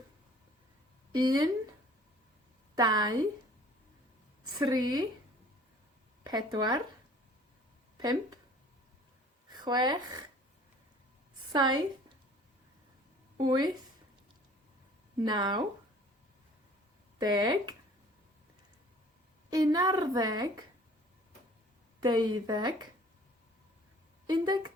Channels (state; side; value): normal; both; correlation 0.51